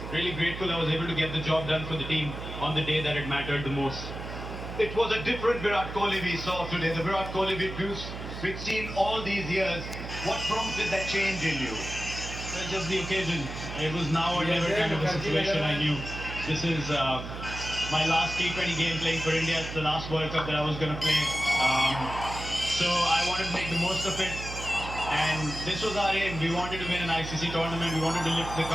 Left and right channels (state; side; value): noise; right; hum, 9 dB below the sound